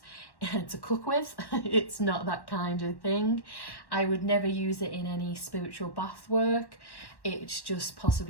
to cook with. It's not that kind of thing. I would never use it in any spiritual bath work. It's just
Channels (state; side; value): late; right; 1.1 ms